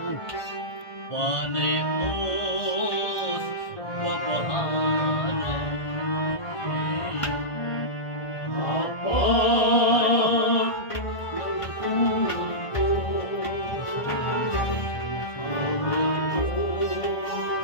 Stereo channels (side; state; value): right; late; 1.5 ms